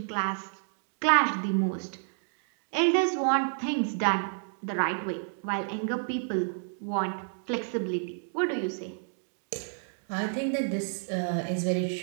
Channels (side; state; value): left; silent; digital silence